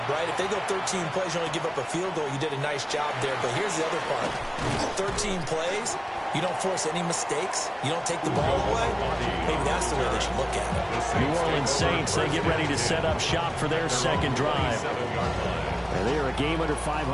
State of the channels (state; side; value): identical; both; correlation 1.00